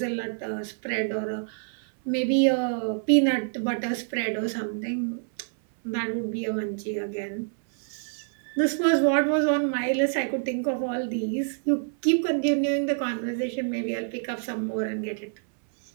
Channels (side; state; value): left; silent; 60 dB below the other